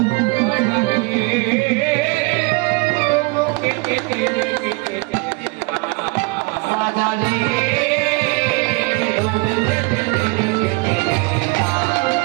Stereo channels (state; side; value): quieter; left; 27.0 dB